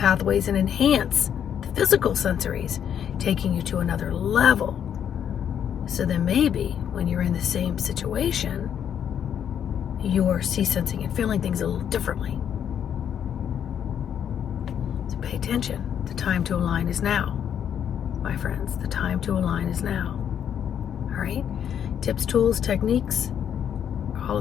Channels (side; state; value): right; quieter; 8.9 dB